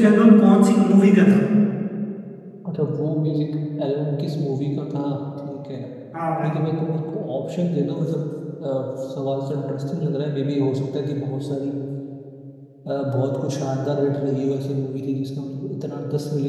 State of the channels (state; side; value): identical; both; correlation 1.00